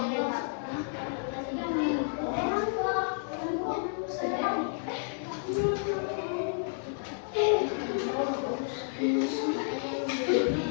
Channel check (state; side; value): silent; right; digital silence